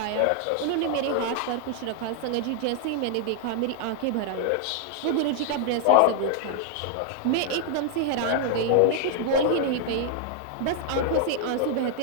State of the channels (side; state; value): both; different; correlation 0.00